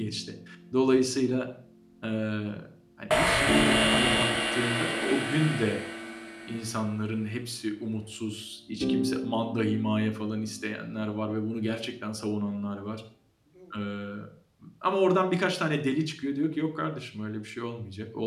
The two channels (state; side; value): identical; both; correlation 1.00